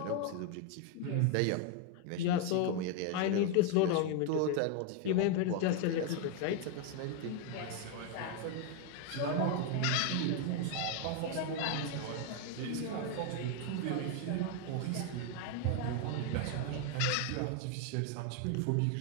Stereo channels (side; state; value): both; different; correlation 0.01